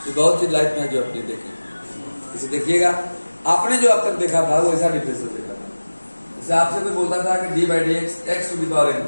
तो बहुत चीज लाइफ में जो अपने देखे। इसे देखिएगा, आपने जो अब तक देखा था वो ऐसा डिफरेंस देखा था। जैसे आपसे कोई बोलता था कि D by D X X to the power N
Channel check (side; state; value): both; inverted; correlation -1.00